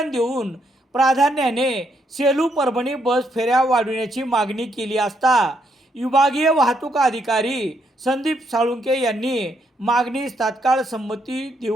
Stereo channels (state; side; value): normal; both; correlation 0.75